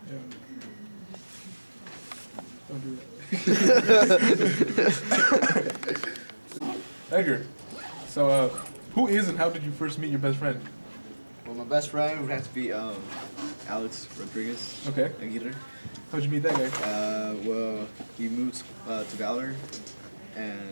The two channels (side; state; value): both; inverted; correlation -1.00